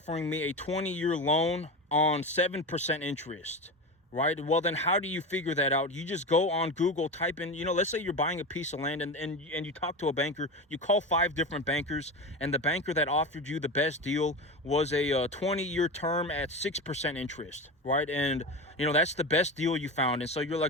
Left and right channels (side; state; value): both; normal; correlation 0.23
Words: me a 20-year loan on 7% interest, right? Well, then how do you figure that out? You just go on Google, type in, let's say you're buying a piece of land and you talk to a banker, you call 5 different bankers, and the banker that offered you the best deal was a 20-year term at 6% interest, right? And, that's the best deal you found. And so you're